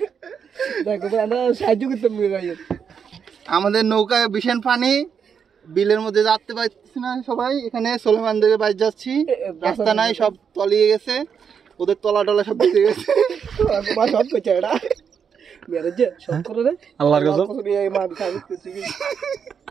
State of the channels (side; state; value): left; quieter; 7.0 dB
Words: আমাদের নৌকায় ভীষণ পানি, বিলের মধ্যে যাতে পারতেছি না সবাই। এখানে সোলেমানদের বাড়ি যাচ্ছি, রাস্তা নাই, সব তলিয়ে গেছে, ওদের তলা টলা সব ভিজে গেছে। আল্লাহর কাছে